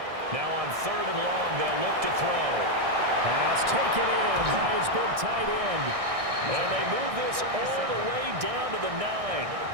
Now on 3rd and long, they'll look to throw. Pass taken in by his big tight end. And they move this all the way down to the 9.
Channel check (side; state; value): left; late; 1.6 ms